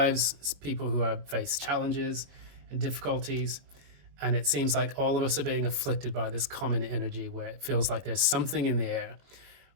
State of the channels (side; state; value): left; late; 21 ms